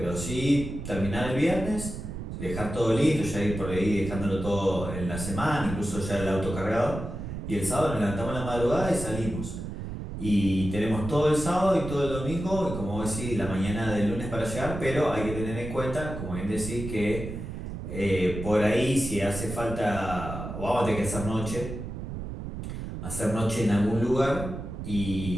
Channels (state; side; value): noise; right; rumble, 7 dB below the sound